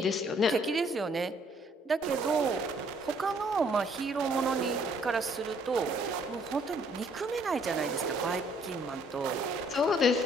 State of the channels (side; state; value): both; normal; correlation 0.64